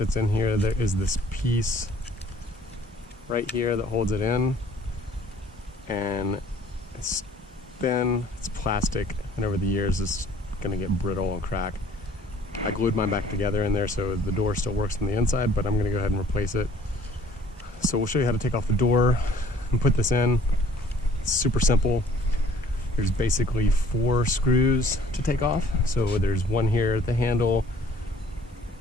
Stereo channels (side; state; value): both; normal; correlation 0.55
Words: in here, there is this piece right here that holds it in, and it's thin, it's plastic, and over the years it's gonna get brittle and crack. I glued mine back together in there so the door still works on the inside, but I'm gonna go ahead and replace it. So we'll show you how to take off the door and put this in. It's super simple. There's basically 4 screws to take off. So there's one here at the handle,